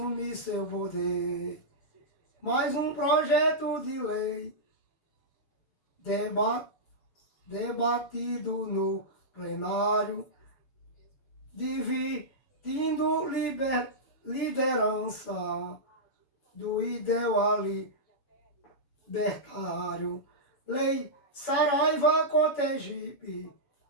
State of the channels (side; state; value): right; late; 7.3 ms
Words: seu poder. Mais um projeto de lei debatido no plenário, dividindo liderança do ideal libertário. Lei Saraiva Cotegipe,